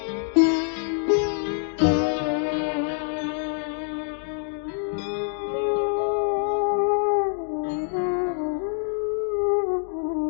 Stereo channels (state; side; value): silent; right; digital silence